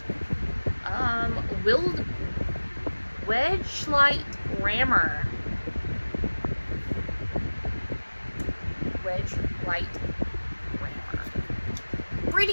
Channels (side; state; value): both; inverted; correlation -1.00